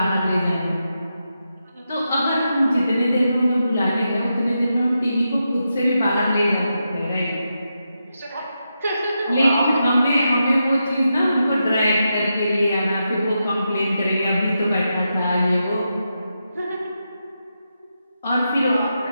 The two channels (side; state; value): both; inverted; correlation -0.86